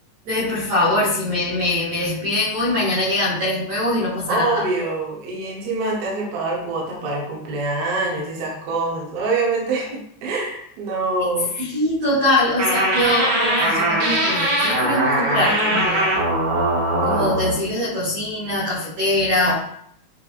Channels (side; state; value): left; late; 19 ms